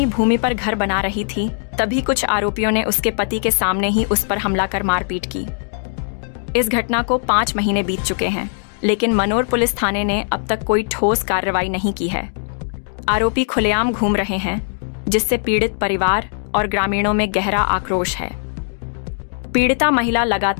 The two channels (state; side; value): silent; right; digital silence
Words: भूमि पर घर बना रही थी, तभी कुछ आरोपियों ने उसके पति के सामने ही उस पर हमला कर मारपीट की। इस घटना को 5 महीने बीत चुके हैं, लेकिन मनोर पुलिस थाने ने अब तक कोई ठोस कार्रवाई नहीं की है। आरोपी खुलेआम घूम रहे हैं, जिससे पीड़ित परिवार और ग्रामीणों में गहरा आक्रोश है। पीड़िता महिला